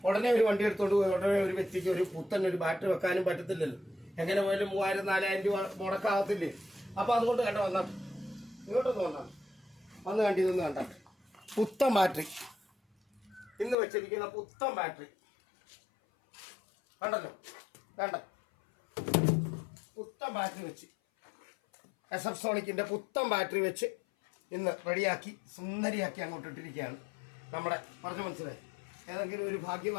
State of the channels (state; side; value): drops out; right; at 13.8 s